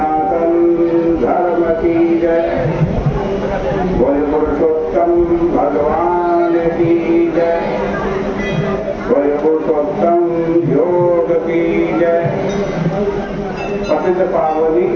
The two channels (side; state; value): both; identical; correlation 1.00